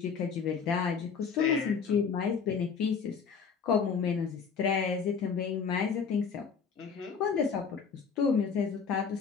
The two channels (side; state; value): right; quieter; 6.1 dB